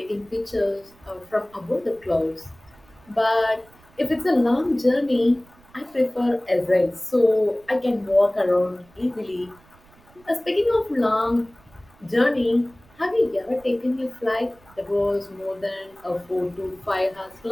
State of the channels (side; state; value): right; noise; rumble, 28 dB below the sound